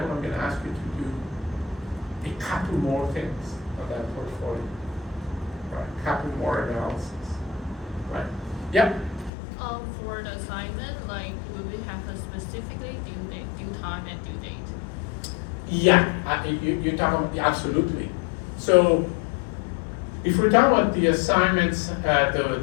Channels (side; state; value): right; drops out; at 9.3 s